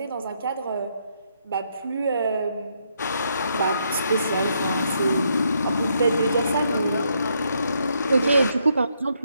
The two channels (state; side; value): inverted; both; correlation -0.75